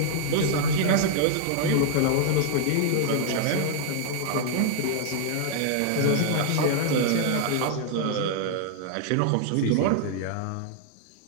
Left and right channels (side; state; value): both; different; correlation -0.01